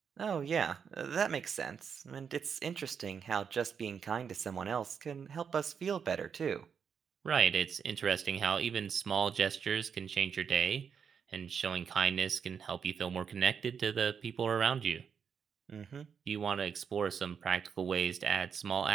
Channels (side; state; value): left; quieter; 6.9 dB